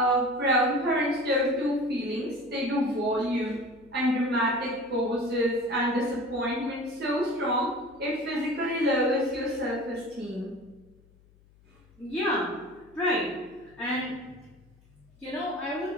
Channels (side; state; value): left; noise; hum, 29 dB below the sound